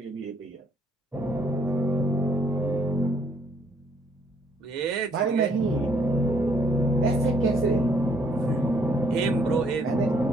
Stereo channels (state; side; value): normal; both; correlation 0.67